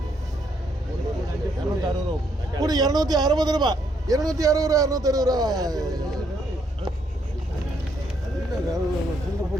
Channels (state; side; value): normal; both; correlation 0.72